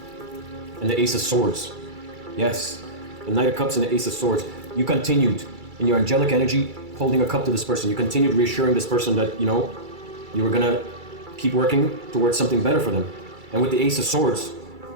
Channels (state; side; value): late; left; 2.3 ms